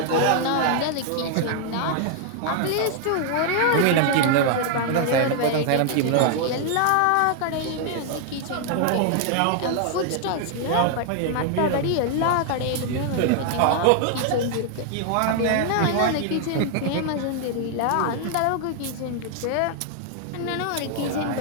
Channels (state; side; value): different; both; correlation 0.00